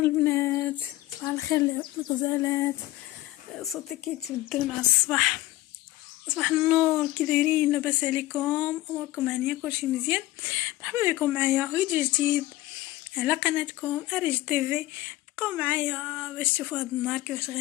صباح الخير الغزالات. صوتي كيتبدل مع الصباح. صباح النور، كي دايرين؟ لاباس عليكم؟ اموركم هانيه؟ كلشي مزيان؟ مرحبا بكم معايا فيديو جديد على قناتكم اريج تيفي. بقاو معايا باش تشوفوا هذا النهار كيفاش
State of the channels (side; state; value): right; quieter; 17.2 dB